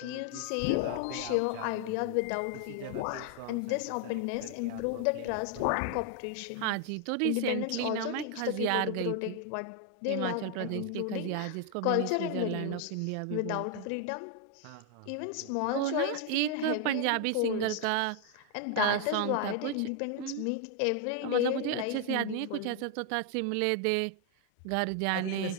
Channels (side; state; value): both; different; correlation 0.00